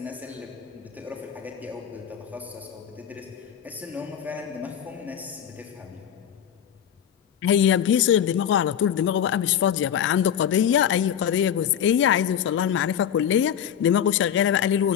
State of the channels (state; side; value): quieter; right; 9.1 dB